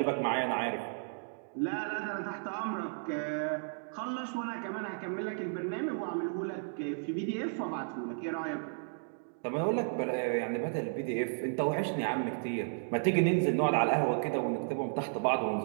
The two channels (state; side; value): silent; left; digital silence